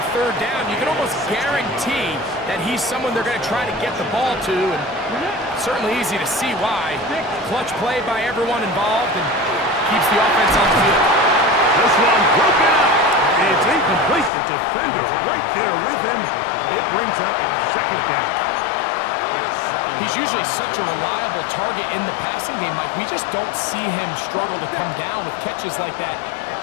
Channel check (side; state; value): right; drops out; at 14.3 s